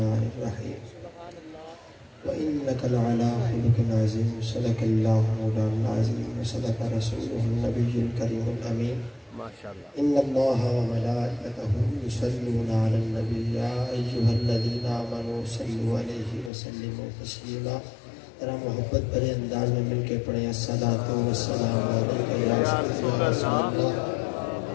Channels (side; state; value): right; drops out; at 16.5 s